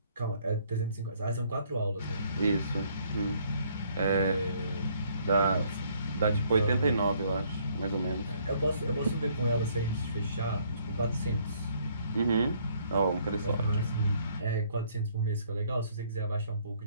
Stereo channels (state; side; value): inverted; both; correlation -0.65